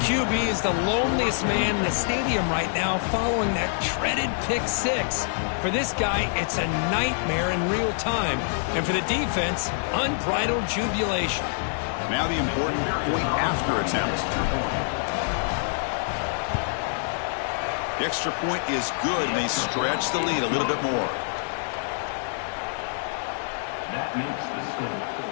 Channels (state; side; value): silent; right; digital silence